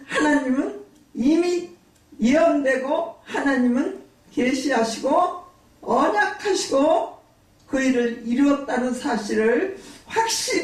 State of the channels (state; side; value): identical; both; correlation 1.00